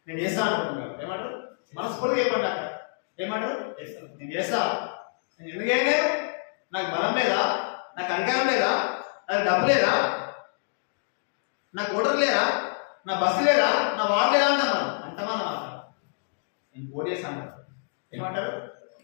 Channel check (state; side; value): silent; right; digital silence